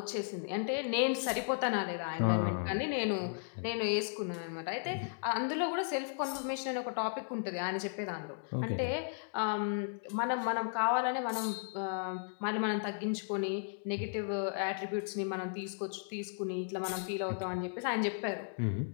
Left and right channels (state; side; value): silent; right; digital silence